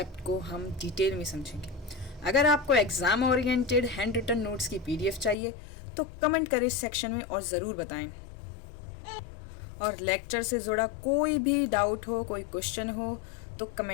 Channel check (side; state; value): right; drops out; at 5.4 s